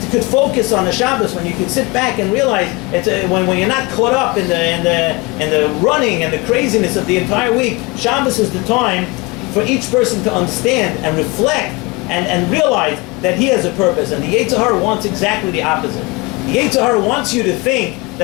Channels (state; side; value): quieter; right; 25.1 dB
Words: could focus on the Shabbos when you can sit back and realize it's when you're not caught up in the running and the craziness of the entire week. Shabbos is the time for each person to understand and reflect and realize that he has a purpose. And the Yetzer Hara wants exactly the opposite. The Yetzer Hara wants you to think